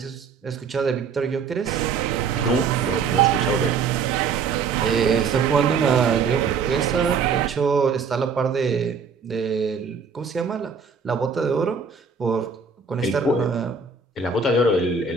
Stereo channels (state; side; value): quieter; left; 5.5 dB